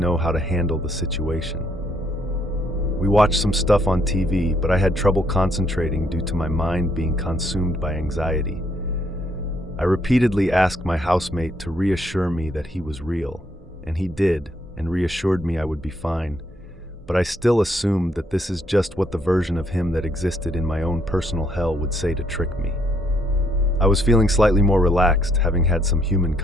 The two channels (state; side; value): normal; both; correlation 0.71